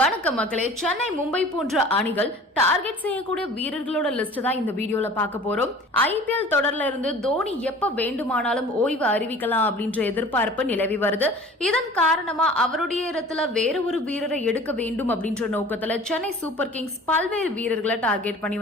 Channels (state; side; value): normal; both; correlation 0.45